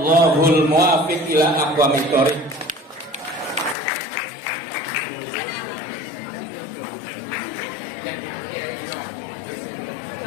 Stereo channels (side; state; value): right; drops out; at 3.8 s